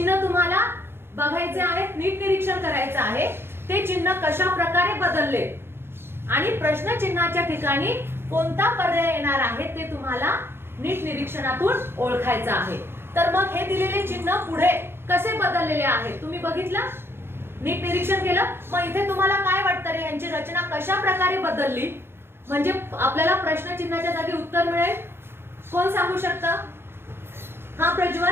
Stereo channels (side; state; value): left; late; 0.11 ms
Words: तुम्हाला बघायचे आहेत, नीट निरीक्षण करायचं आहे ते चिन्ह कशा प्रकारे बदलले आणि प्रश्न चिन्हाच्या ठिकाणी कोणता पर्याय येणार आहे ते तुम्हाला नीट निरीक्षणातून ओळखायचं आहे। तर मग हे दिलेले चिन्ह पुढे कसे बदललेले आहेत तुम्ही बघितलं, नीट निरीक्षण केलं। मग इथे तुम्हाला काय वाटतं रे, यांची रचना कशा प्रकारे बदलली म्हणजे आपल्याला प्रश्न चिन्हाच्या जागी उत्तर मिळेल? कोण सांगू शकतं? हा